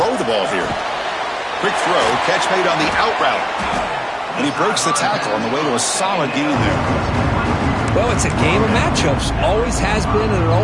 the ball here. Quick throw, catch made on the out route. And he breaks the tackle on the way to a solid gain there. Well, it's a game of matchups. Always has been and it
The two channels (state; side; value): identical; both; correlation 1.00